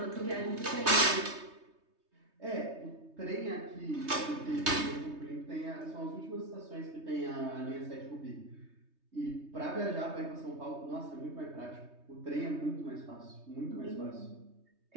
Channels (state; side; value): late; left; 3.2 ms